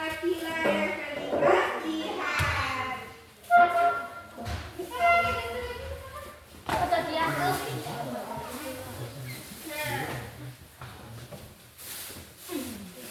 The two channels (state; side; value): identical; both; correlation 1.00